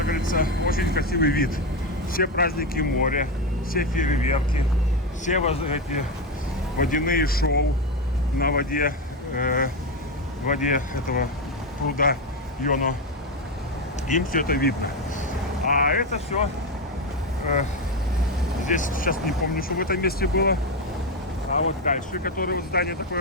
говорится, очень красивый вид. Все праздники моря, все фейерверки, все эти водяные шоу на воде, этого пруда Йоно. Им все это видно. А это все, здесь сейчас не помню, что в этом месте было. А вот дальше, которое вот здание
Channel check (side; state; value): both; normal; correlation 0.12